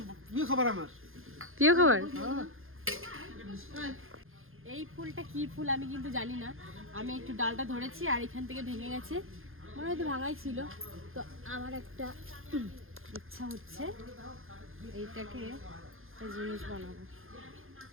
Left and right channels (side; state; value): left; late; 0.60 ms